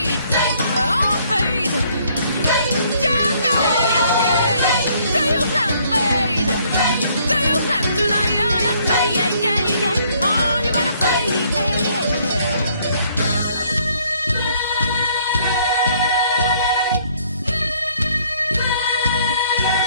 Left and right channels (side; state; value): both; inverted; correlation -0.65